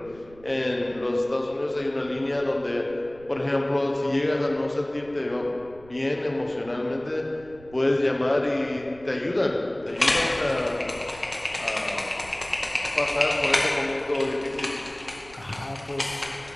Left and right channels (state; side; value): noise; right; rumble, 22 dB below the sound